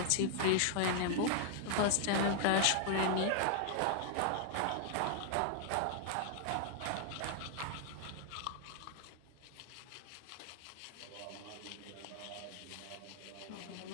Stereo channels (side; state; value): both; different; correlation 0.00